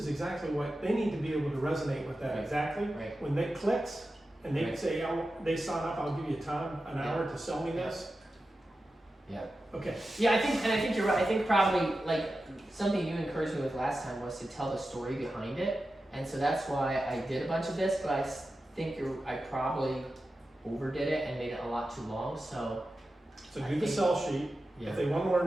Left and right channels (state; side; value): normal; both; correlation 0.92